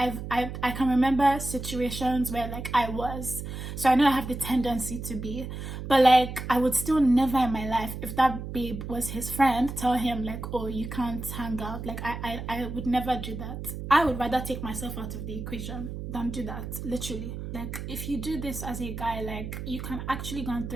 can remember situations where, like, I was. So I know I have the tendency to be, but like, I would still never in my life, if that babe was his friend, tell him like, oh, you can't hang out. Like, I would never do that. I would rather take myself out of the equation than do that, literally. Like, if you do this as a guy, like, you can actually go and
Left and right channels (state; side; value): noise; right; hum, 7 dB below the sound